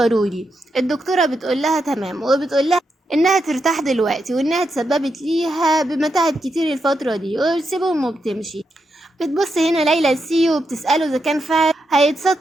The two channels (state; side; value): normal; both; correlation 0.84